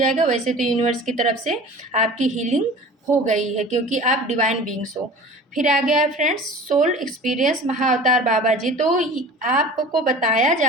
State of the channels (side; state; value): both; normal; correlation 0.41